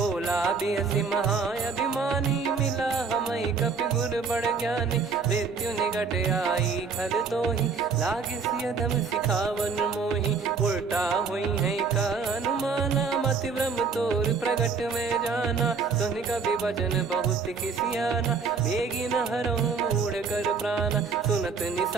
बिहसी महाअभिमानी मिला हमई कपि गुर बड़ ज्ञानी मृत्यु निकट आई खल तो ही लागे सियधम सिखावन मोही उल्टा हुई है का अनुमाना मति ब्रह्म तोर प्रगट में जाना सुन कभी भजन बहुत किसियाना बेगी न हरहु मूढ़ कर प्राणा सुनत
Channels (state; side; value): quieter; left; 5.1 dB